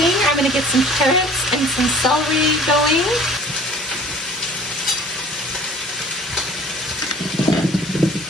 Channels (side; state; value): both; normal; correlation 0.48